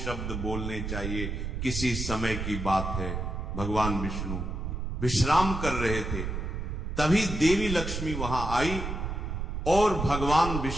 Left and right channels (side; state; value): right; noise; rumble, 4 dB below the sound